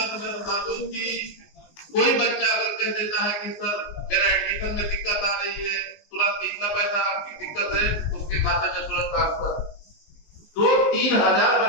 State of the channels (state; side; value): late; right; 19 ms